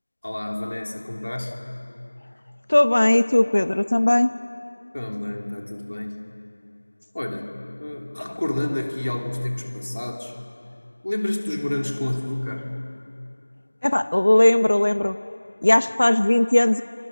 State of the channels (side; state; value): both; inverted; correlation -1.00